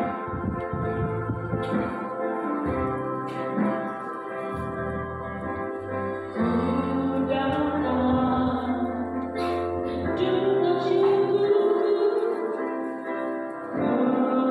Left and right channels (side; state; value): both; identical; correlation 1.00